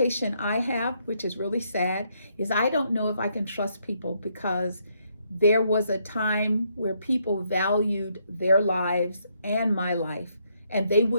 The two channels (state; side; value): inverted; both; correlation -0.74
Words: I have, which is really sad, is I don't know if I can trust people, because there was a time where people valued their lives and my life, and they